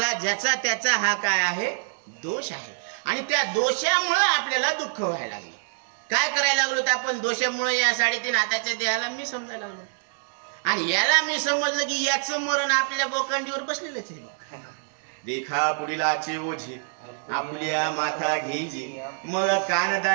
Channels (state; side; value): silent; left; 61 dB below the other